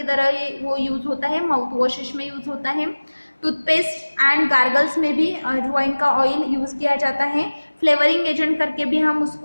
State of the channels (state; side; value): inverted; both; correlation -1.00